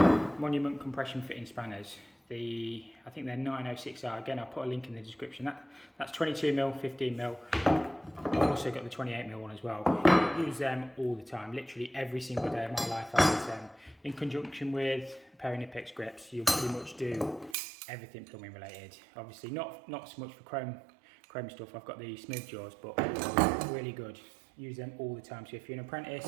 Monument compression fitting spanners. I think they're 906R. Again, I'll put a link in the description. That's 22mm, 15mm. I've also got the 28mm one as well. I use them all the time. Literally every single day of my life I use them. In conjunction with a pair of Nipex grips, you'll pretty much do everything plumbing related. Obviously not so much for chrome stuff. I've got the smooth jaws, but really good. Use them all the time. So if you're an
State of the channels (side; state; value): left; drops out; at 17.6 s